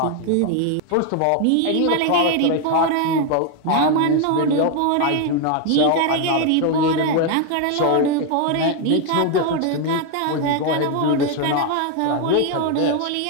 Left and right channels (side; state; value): both; different; correlation 0.01